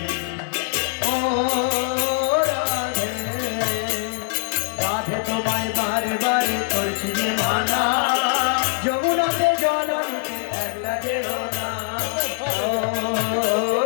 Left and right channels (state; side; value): silent; right; 60 dB below the other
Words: ओ राधे राधे তোমায় বারে বারে করছি যে মানা যমুনাতে জল আনতে একলা যেও না ও